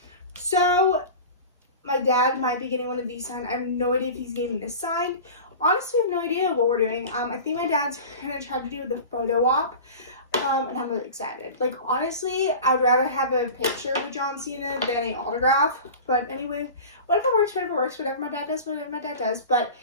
So, my dad might be getting one of these signed. I have no idea if he's getting this signed. Honestly, I have no idea what we're doing. I think my dad's gonna try to do the photo op. And I'm really excited. Like, honestly, I would rather have a picture with John Cena than an autograph. But anyway, whatever works, whatever works. Whatever my dad does, whatever my dad does. But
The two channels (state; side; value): inverted; both; correlation -0.34